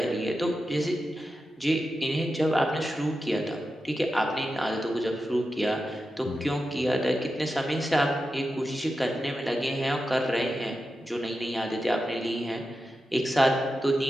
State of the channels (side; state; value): both; normal; correlation 0.91